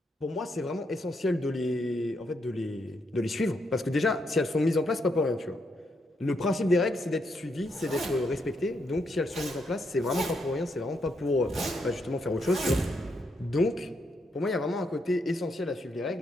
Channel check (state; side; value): normal; both; correlation 0.78